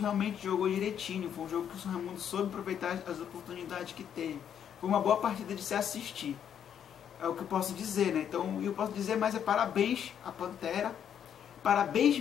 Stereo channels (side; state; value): right; quieter; 8.9 dB